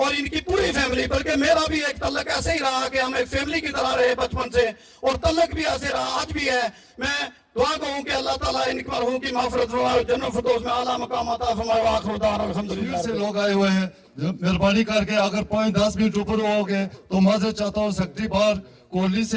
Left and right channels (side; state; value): both; identical; correlation 1.00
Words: ان کی پوری فیملی، بلکہ میرا بھی ایک تعلق ایسے ہی رہا کہ ہم ایک فیملی کی طرح رہے بچپن سے، اور تعلق بھی ایسے رہا آج بھی ہے. میں دعا کروں کہ اللہ تعالیٰ ان مرحوم کی مغفرت فرمائے، جنت الفردوس میں اعلیٰ مقام عطا فرمائے. وآخر دعوانا الحمدللہ. سے لوگ آئے ہوئے ہیں، مہربانی کر کے اگر 5-10 منٹ اوپر ہو گئے تو معذرت چاہتا ہوں. سیکرٹری بار کوہلی